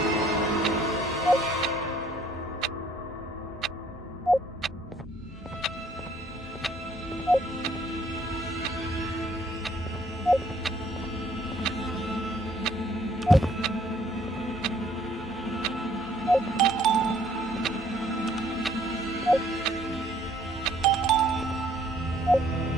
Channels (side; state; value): both; normal; correlation 0.62